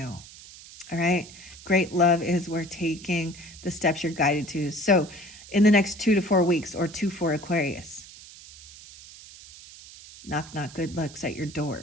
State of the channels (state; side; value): noise; right; hiss, 18 dB below the sound